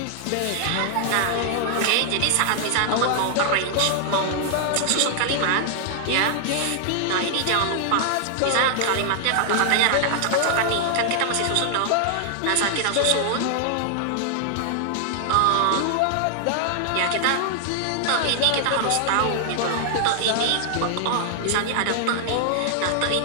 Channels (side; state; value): both; different; correlation 0.00